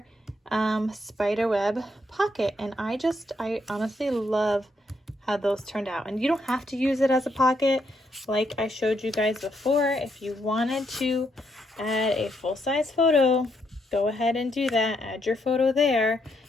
Spiderweb pocket. And I honestly love how those turned out. And you don't have to use it as a pocket like I showed you guys before. If you wanted to add a full-size photo, go ahead and do that. Add your photo there.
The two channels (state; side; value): normal; both; correlation 0.76